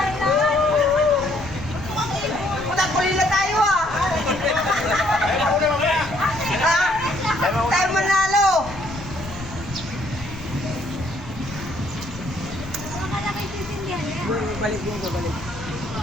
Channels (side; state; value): left; noise; rumble, 15 dB below the sound